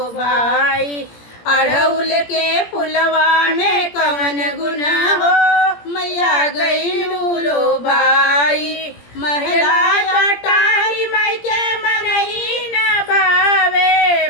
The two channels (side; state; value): right; late; 17 ms